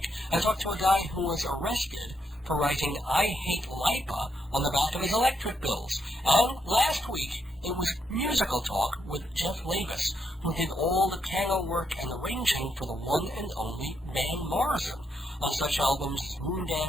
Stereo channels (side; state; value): both; normal; correlation 0.79